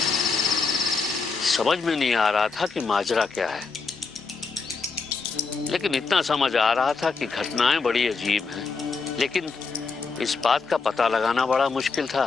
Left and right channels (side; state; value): right; quieter; 4.6 dB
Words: समझ में नहीं आ रहा था कि माजरा क्या है, लेकिन इतना समझ आ रहा था कि घटनाएं बड़ी अजीब हैं। लेकिन इस बात का पता लगाना बड़ा मुश्किल था